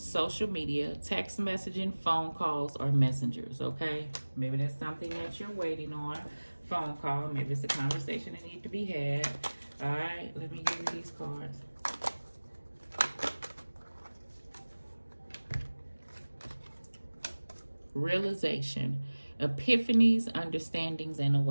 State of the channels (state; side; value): inverted; both; correlation -1.00